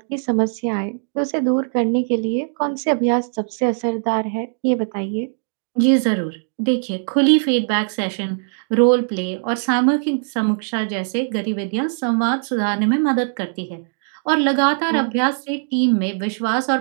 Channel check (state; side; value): silent; left; digital silence